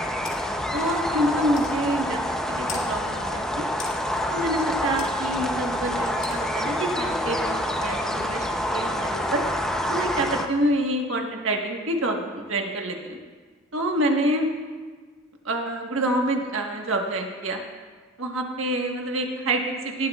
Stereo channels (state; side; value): normal; both; correlation 0.49